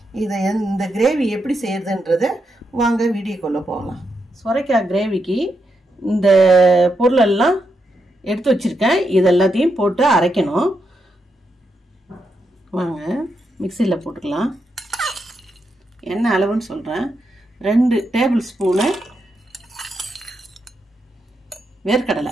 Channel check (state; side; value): normal; both; correlation 0.83